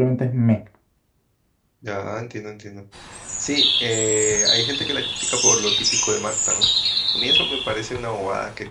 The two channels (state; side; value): identical; both; correlation 1.00